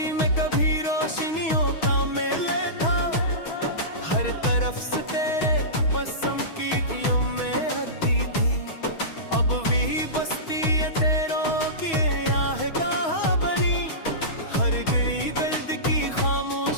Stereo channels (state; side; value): late; right; 6.3 ms